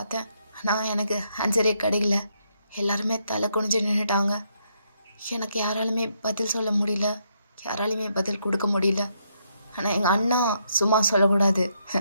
ஆனால் எனக்கு ஆன்சரே கிடைக்கல. எல்லாருமே தலை குனிஞ்சு நின்றுட்டாங்க. எனக்கு யாராலுமே பதில் சொல்ல முடியல, யாராலையுமே பதில் கொடுக்க முடியல. ஆனால் எங்கள் அண்ணா சும்மா சொல்லக்கூடாது,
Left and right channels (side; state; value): both; inverted; correlation -0.76